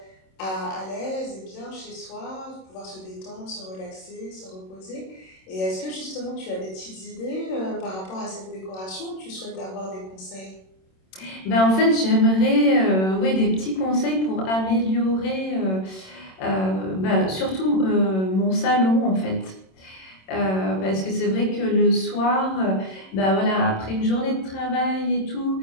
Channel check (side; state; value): right; late; 26 ms